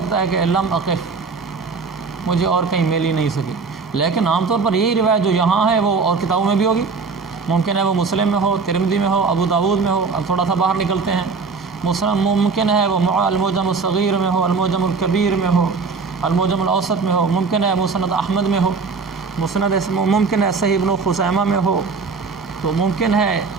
ہے کہ لم اقف، مجھے اور کہیں مل ہی نہیں سکی، لیکن عام طور پر یہی روایت جو یہاں ہے وہ اور کتابوں میں بھی ہوگی، ممکن ہے وہ مسلم میں ہو، ترمذی میں ہو، ابو داود میں ہو، اب تھوڑا سا باہر نکلتے ہیں، ممکن ہے وہ المعجم الصغیر میں ہو، المعجم الکبیر میں ہو، المعجم الاوسط میں ہو، ممکن ہے مسند احمد میں ہو، ممکن ہے صحیح ابن خزیمہ میں ہو، تو ممکن ہے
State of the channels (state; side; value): quieter; left; 4.7 dB